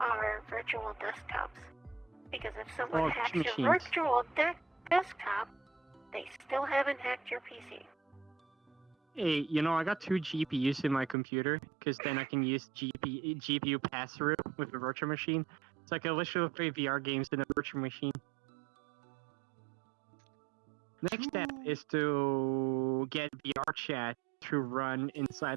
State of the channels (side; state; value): left; drops out; at 11.2 s